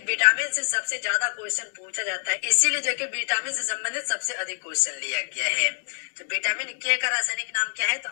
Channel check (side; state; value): right; silent; digital silence